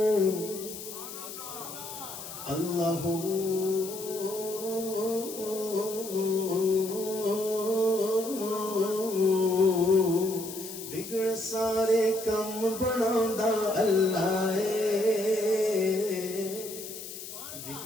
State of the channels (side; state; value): left; noise; hiss, 11 dB below the sound